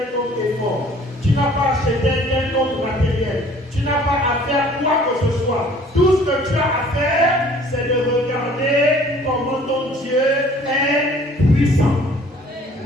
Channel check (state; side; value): normal; both; correlation 0.53